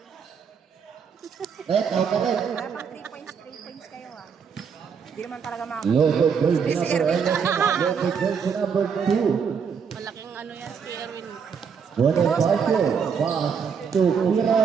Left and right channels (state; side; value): quieter; left; 6.5 dB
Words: Out ka rin. Dapat 3 points kayo ah. Hindi naman talaga mga... Local jersey number 11. Local jersey number 2. Malaking ano yan, si Erwin. Bonifacio, pass to Pira